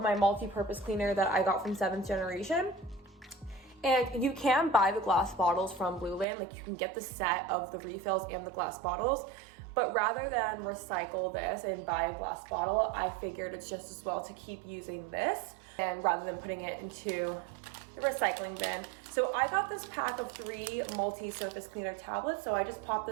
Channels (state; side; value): drops out; left; at 6.2 s